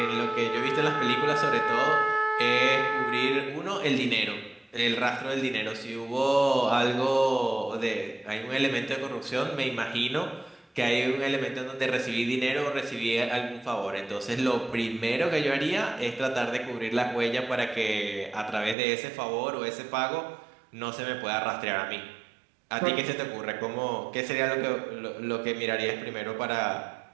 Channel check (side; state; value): left; drops out; at 18.8 s